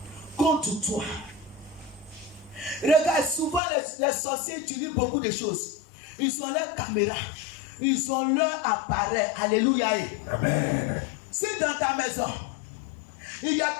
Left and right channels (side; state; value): right; drops out; at 3.6 s